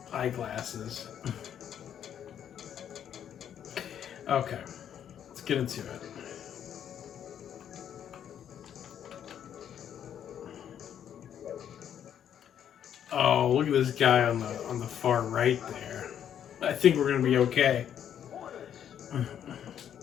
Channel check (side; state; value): right; quieter; 9.4 dB